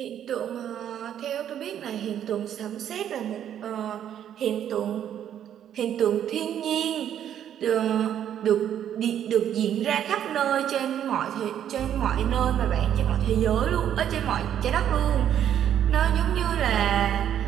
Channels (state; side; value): quieter; left; 10.0 dB